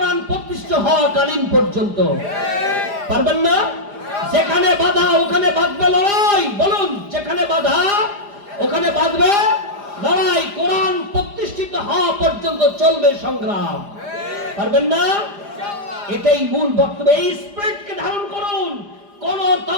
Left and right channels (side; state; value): left; late; 4.9 ms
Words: প্রতিষ্ঠিত হওয়া কালীন পর্যন্ত। পারবেন না? যেখানে বাধা ওখানে বাঁধবে লড়াই। বলুন, যেখানে বাধা ওখানে বাঁধবে লড়াই। কোরআন প্রতিষ্ঠিত হওয়া পর্যন্ত চলবে সংগ্রাম। পারবেন না? এটাই মূল বক্তব্য। এই স্পিরিটকে ধারণ করুন। কোন